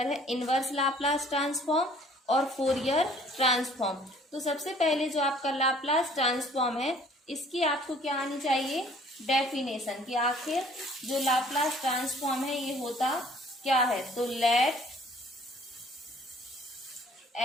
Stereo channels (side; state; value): both; normal; correlation 0.56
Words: है इनवर्स लाप्लास ट्रांसफॉर्म और फोरियर ट्रांसफॉर्म। तो सबसे पहले जो आपका लाप्लास ट्रांसफॉर्म है, इसकी आपको क्या आनी चाहिए? डेफिनेशन कि आखिर जो लाप्लास ट्रांसफॉर्म है ये होता क्या है। तो लेट